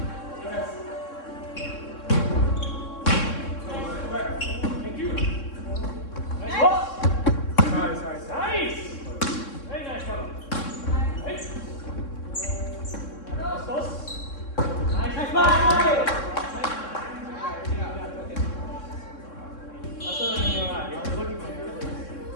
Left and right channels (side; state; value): right; late; 3.6 ms